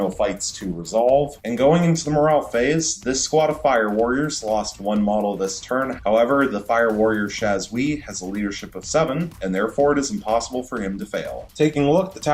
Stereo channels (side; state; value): both; identical; correlation 1.00